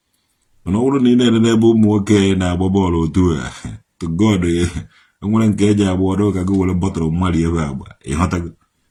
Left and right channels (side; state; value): both; identical; correlation 1.00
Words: Mana ọ bụrụ na ị na-enene ebe ụmụ nwoke na-agba bọọlụ otu a to God enwere nke eji agba ọdụ ka gị were bọtụrụ mmadụ ebe agba ịghọtago.